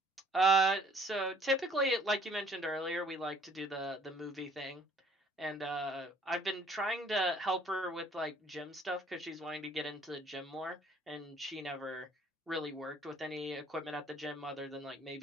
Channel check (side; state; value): both; normal; correlation 0.59